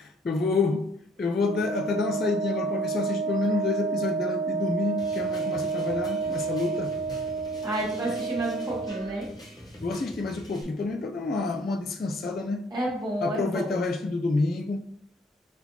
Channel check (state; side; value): normal; both; correlation 0.56